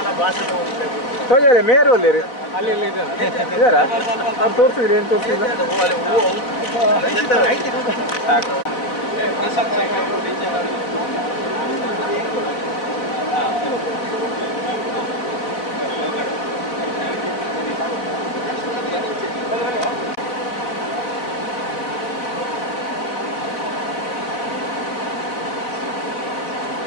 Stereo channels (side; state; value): right; late; 3.9 ms